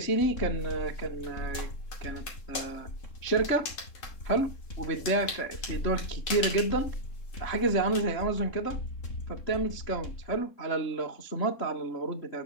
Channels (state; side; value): late; right; 3.7 ms